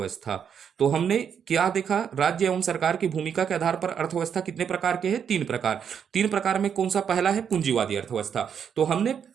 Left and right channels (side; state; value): left; quieter; 7.7 dB